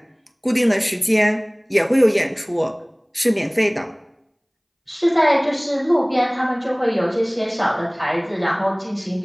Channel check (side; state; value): both; identical; correlation 1.00